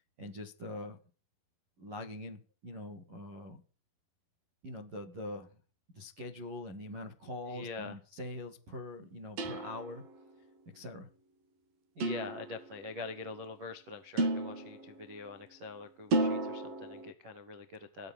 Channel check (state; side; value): late; left; 11 ms